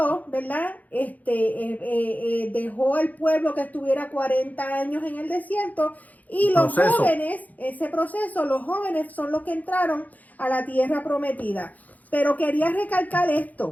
¿verdad? Dejó al pueblo que estuviera 40 años en el desierto, y los jóvenes, ese proceso, los jóvenes son los que entraron a la tierra prometida. Pero quería recalcar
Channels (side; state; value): right; late; 0.079 ms